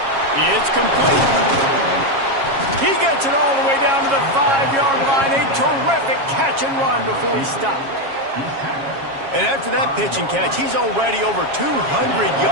It's complete. He gets it all the way down to the 5-yard line. A terrific catch and run before he stopped. And after that pitch and catch, he's already over 200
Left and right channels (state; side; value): late; left; 7.3 ms